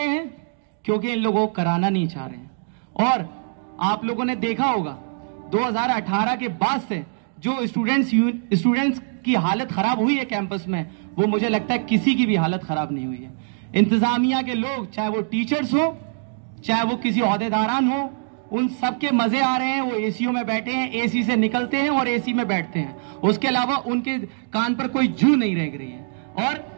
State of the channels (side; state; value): left; silent; digital silence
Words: हैं? क्योंकि इन लोगों को कराना नहीं चाह रहे हैं। और आप लोगों ने देखा होगा 2018 के बाद से जो स्टूडेंट्स की हालत खराब हुई है कैंपस में, वो मुझे लगता है किसी की भी हालत खराब नहीं हुई है। इंतजामिया के लोग, चाहे वो टीचर्स हो, चाहे वो किसी ओहदेदारान हो, उन सबके मजे आ रहे हैं। वो एसीओ में बैठे हैं, एसी से निकलते हैं और एसी में बैठते हैं। उसके अलावा उनके कान पर कोई जू नहीं रह रही है। और